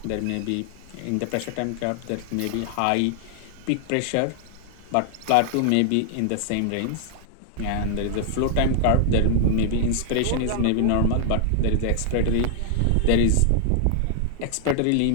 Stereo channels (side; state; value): both; different; correlation -0.01